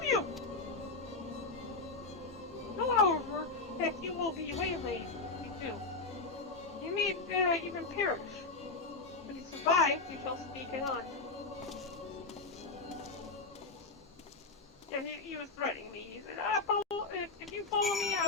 you! Know, however, that you will be waylaid if you do. You may even perish. If you survive, you shall speak on. Yeah, he was threatening me. He said, if you follow me, I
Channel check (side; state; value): right; quieter; 3.7 dB